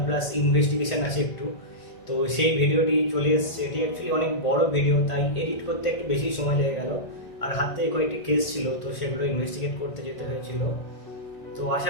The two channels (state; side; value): late; right; 1.8 ms